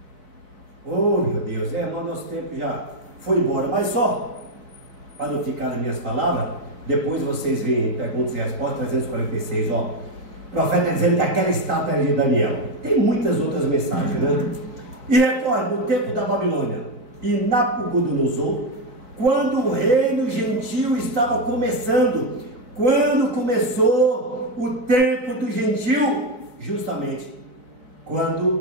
oh meu Deus, mas nosso tempo já foi embora, mas só para não ficar nas minhas palavras, depois vocês veem perguntas e respostas 346, ó, o profeta dizendo que aquela estátua era de Daniel. Tem muitas outras mensagens, né? E recorde, no tempo da Babilônia e Nabucodonosor, quando o reino gentil estava começando, quando começou o tempo do gentil, justamente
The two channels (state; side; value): late; left; 3.8 ms